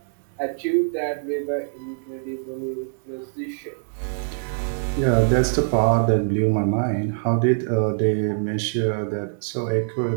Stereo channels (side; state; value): left; silent; digital silence